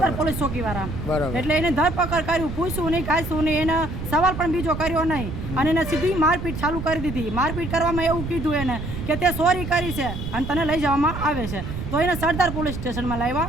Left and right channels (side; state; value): right; noise; rumble, 6 dB below the sound